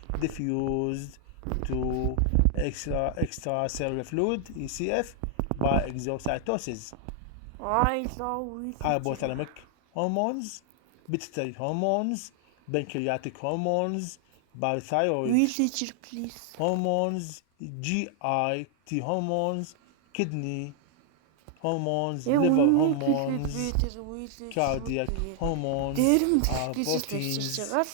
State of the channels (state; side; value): different; both; correlation 0.00